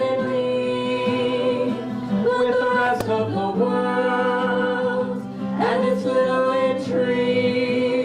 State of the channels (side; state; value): both; identical; correlation 1.00